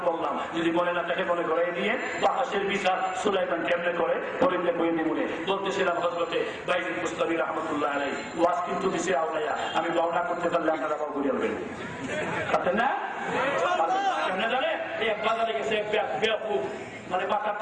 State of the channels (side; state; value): both; identical; correlation 1.00